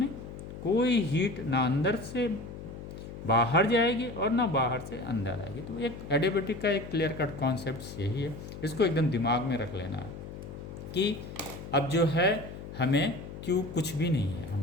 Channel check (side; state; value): left; noise; hum, 11 dB below the sound